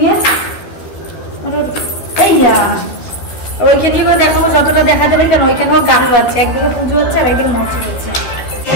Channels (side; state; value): right; late; 13 ms